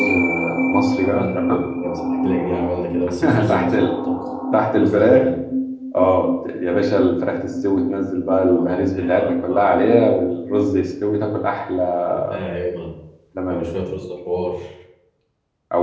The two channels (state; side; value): identical; both; correlation 1.00